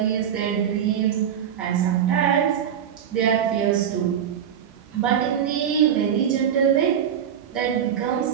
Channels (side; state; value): left; quieter; 9.0 dB